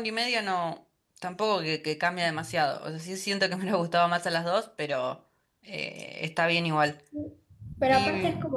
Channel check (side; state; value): both; identical; correlation 1.00